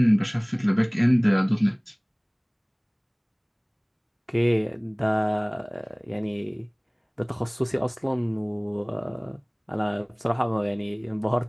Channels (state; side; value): identical; both; correlation 1.00